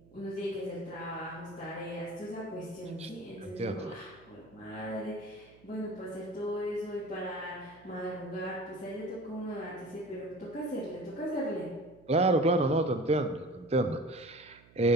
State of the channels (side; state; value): right; noise; hum, 25 dB below the sound